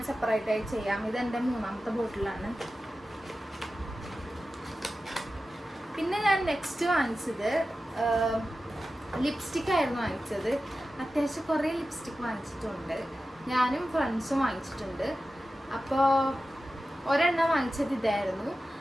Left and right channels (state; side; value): normal; both; correlation 0.93